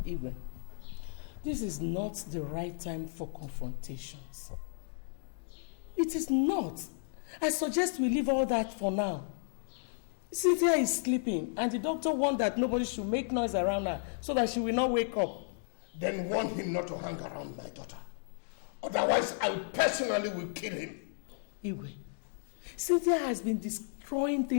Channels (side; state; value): right; silent; digital silence